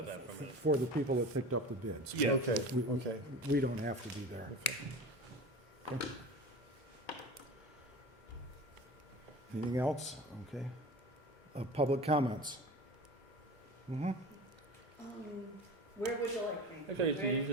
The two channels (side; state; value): both; normal; correlation 0.33